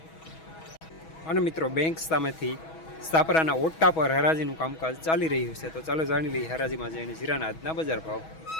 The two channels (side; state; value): right; late; 6.2 ms